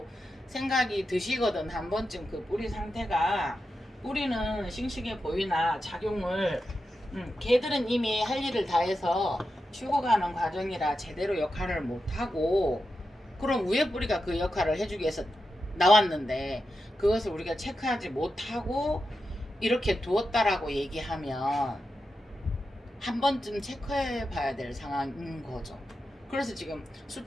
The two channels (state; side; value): normal; both; correlation 0.89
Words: 생각이 드시거든. 한 번쯤 그 뿌리 상태가 뿌리는 싱싱해 보이나 작용을 걔들은 이미 할 일을 다 해서 죽어가는 과정이라 제대로 역할을 못하고 그럼 위에 뿌리가 그 역할을 해주기 위해서 나왔는데 그것을 우리가 체크하지 못하고 이렇게 두었다라고 얘기하면 한 번쯤 체크해 봐야 될 상황인 거죠. 그래서 지금